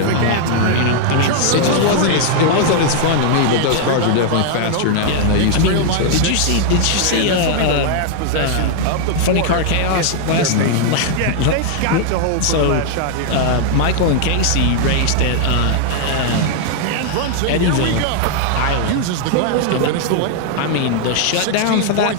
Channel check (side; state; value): both; different; correlation 0.00